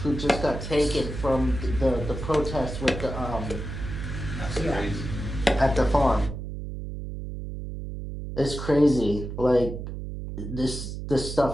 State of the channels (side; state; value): right; noise; hum, 7 dB below the sound